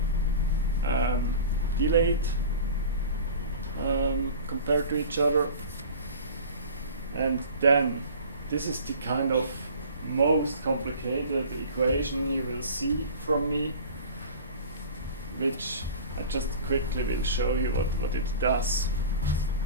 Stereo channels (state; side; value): inverted; both; correlation -0.39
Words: delayed compared to each other. And then, this is the kind of most complicated equation you will see from me, which I just quickly will show you what it does.